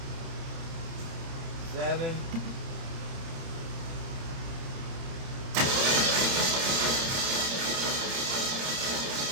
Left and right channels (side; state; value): left; late; 30 ms